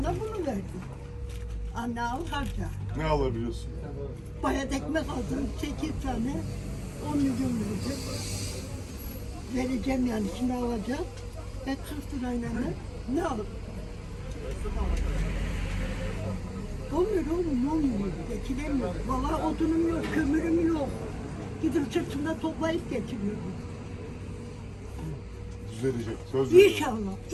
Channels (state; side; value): identical; both; correlation 1.00